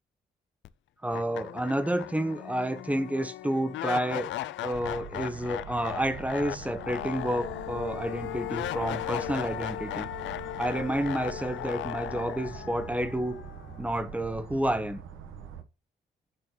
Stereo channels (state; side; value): normal; both; correlation 0.76